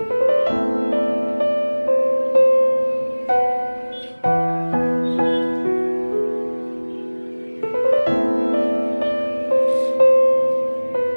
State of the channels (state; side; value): inverted; both; correlation -1.00